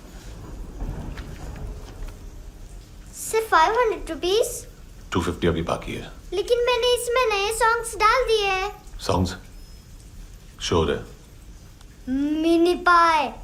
सिर्फ 500 रुपीस? 250 अभी बाकी है। लेकिन मैंने इसमें नए सॉन्ग्स डाल दिए हैं। सॉन्ग्स? श्योर है? मिनी पाए।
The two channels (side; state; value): both; identical; correlation 1.00